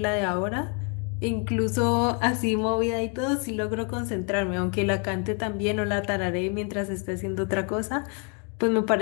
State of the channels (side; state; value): right; quieter; 37.7 dB